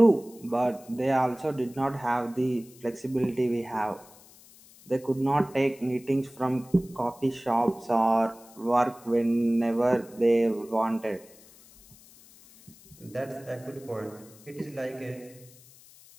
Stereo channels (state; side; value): noise; left; hiss, 24 dB below the sound